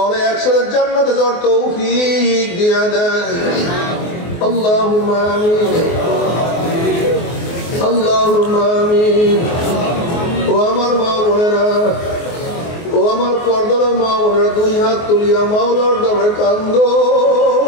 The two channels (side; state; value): right; late; 24 ms